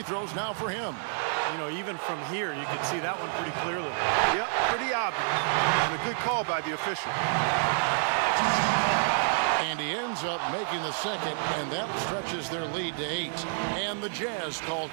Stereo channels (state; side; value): silent; left; 59 dB below the other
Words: throws now for him. You know, even from here, you can see that one pretty clearly. Yep, pretty obvious. And a good call by the official. And he ends up making the second, and that stretches their lead to 8. And the Jazz call